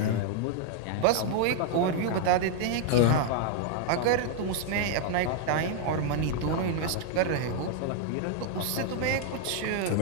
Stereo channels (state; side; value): different; both; correlation 0.00